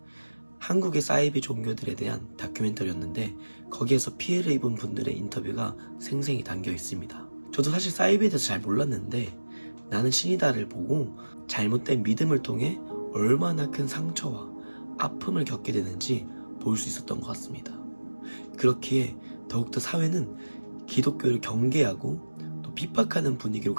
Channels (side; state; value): both; inverted; correlation -1.00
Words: 한국의 사이비 종교들에 대한 다큐멘터리였는데 거기에서 피해를 입은 분들의 인터뷰가 생생히 담겨 있습니다. 저도 사실 사이비에 대해서 잘 몰랐는데 나는 신이다를 보고 잘못된 믿음을 통해 얼마나 큰 상처와 아픔을 겪게 되는지 볼 수 있었던 것 같습니다. 그렇기에 더욱더 사회는 기독교를 경계하고 또 핍박하는 분위기로